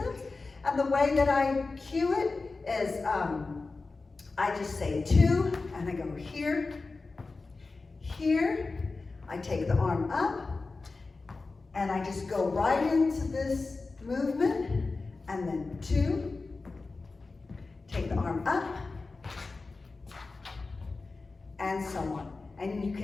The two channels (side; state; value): right; quieter; 3.8 dB